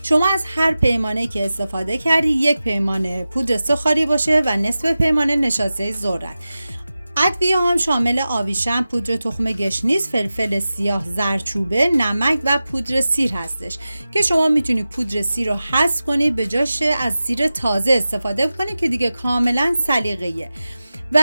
شما از هر پیمانه که استفاده کردی یک پیمانه پودر سوخاری باشه و نصف پیمانه نشاسته ذرت. ادویه هم شامل آویشم، پودر تخم گشنیز، فلفل سیاه، زردچوبه، نمک و پودر سیر هستش که شما میتونید پودر سیر رو حذف کنید به جاش از سیر تازه استفاده کنید که دیگه کاملا سلیقه‌ایه. و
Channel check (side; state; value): both; inverted; correlation -0.95